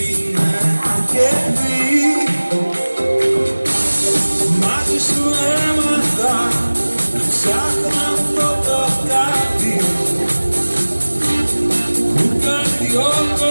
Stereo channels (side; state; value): both; inverted; correlation -1.00